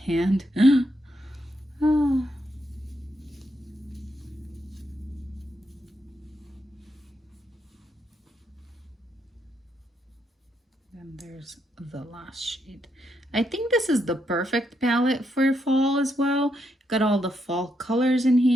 Oh. And there's the last shade. I think this is the perfect palette for fall as well. Got all the fall colors in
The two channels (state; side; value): normal; both; correlation 0.79